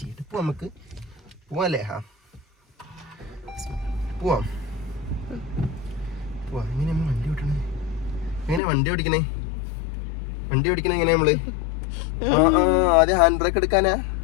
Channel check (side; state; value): right; drops out; at 8.6 s